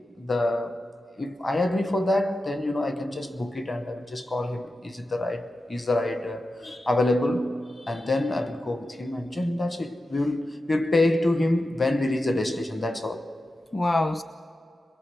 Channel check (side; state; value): both; normal; correlation 0.92